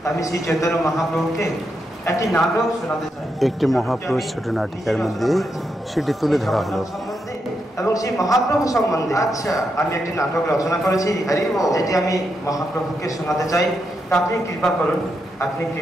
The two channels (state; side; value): normal; both; correlation 0.83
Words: আমি শ্রী চৈতন্য মহাপ্রভুকে একটি নাটক শোনাতে চাই। একটি মহাপ্রভু ছোট নাটিকার মধ্যে সেটি তুলে ধরা হলো। এবং সেই মহাপ্রভু সম্বন্ধে আমি একটি নাটক রচনা করেছি, যেটি আমি মহাপ্রভুকে শোনাতে চাই। তা আপনি কৃপা করুন, আপনি